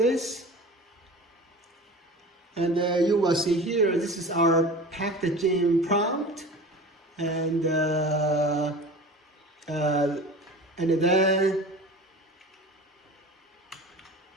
And you will see here, this is our Pktgen prompt, and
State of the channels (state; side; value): normal; both; correlation 0.36